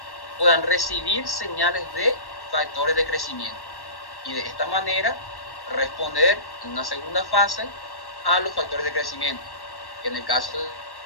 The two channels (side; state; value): right; late; 1.1 ms